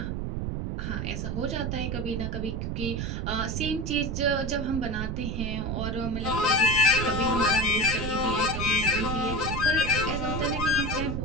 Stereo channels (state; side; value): noise; right; rumble, 2 dB below the sound